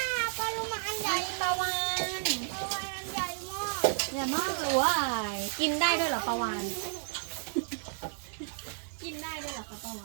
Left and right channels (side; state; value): left; silent; digital silence